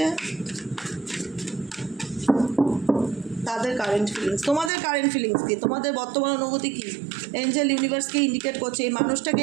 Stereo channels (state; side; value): drops out; left; at 4.7 s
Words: তাদের কারেন্ট ফিলিংস, তোমাদের কারেন্ট ফিলিংস কী, তোমাদের বর্তমান অনুভূতি কী, এঞ্জেল ইউনিভার্সকে ইন্ডিকেট করছে। এই মানুষটাকে